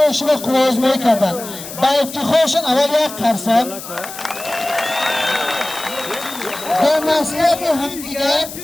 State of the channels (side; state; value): left; noise; hiss, 12 dB below the sound